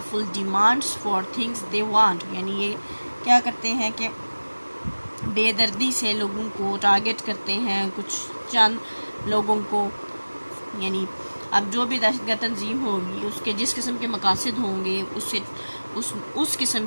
demands for things they want. یعنی یہ کیا کرتے ہیں کہ بے دردی سے لوگوں کو ٹارگٹ کرتے ہیں، کچھ چند لوگوں کو. یعنی اب جو بھی دہشت گرد تنظیم ہوگی اس کے جس قسم کے مقاصد ہوں گے اس قسم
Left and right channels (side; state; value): both; inverted; correlation -1.00